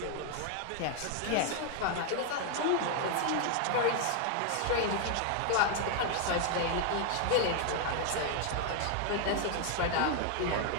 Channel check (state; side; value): different; both; correlation 0.00